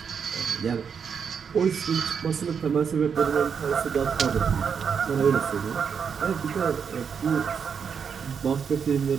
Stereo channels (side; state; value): left; quieter; 6.7 dB